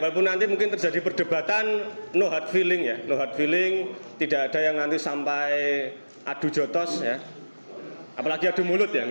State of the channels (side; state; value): both; inverted; correlation -1.00